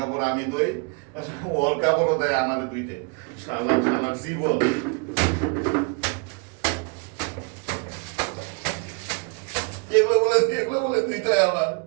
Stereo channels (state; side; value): quieter; left; 35.4 dB